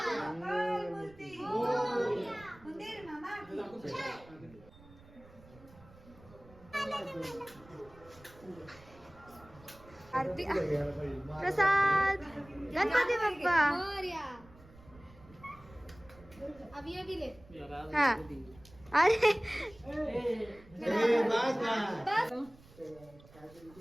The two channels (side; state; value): right; noise; rumble, 23 dB below the sound